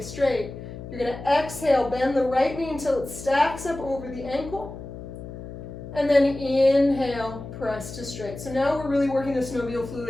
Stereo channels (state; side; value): noise; left; hum, 11 dB below the sound